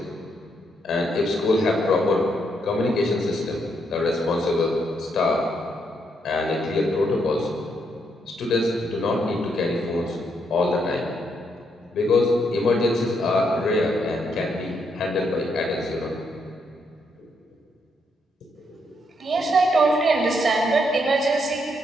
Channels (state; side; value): normal; both; correlation 0.76